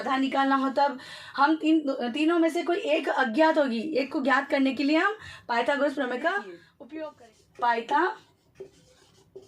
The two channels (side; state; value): both; identical; correlation 1.00